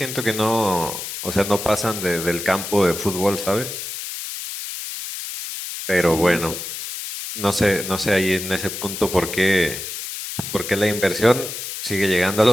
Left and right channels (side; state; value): left; noise; hiss, 7 dB below the sound